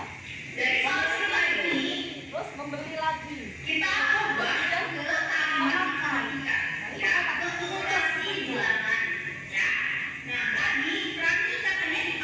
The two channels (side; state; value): both; identical; correlation 1.00